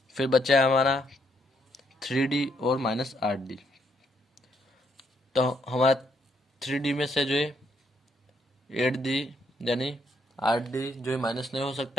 फिर बचा है हमारा 3d और माइनस 8d। तो हमारा 3d में से जो है 8d यानी 8d जो है माइनस नहीं हो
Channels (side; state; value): both; normal; correlation 0.73